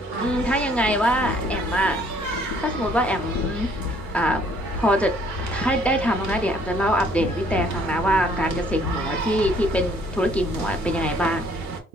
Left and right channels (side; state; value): both; normal; correlation 0.61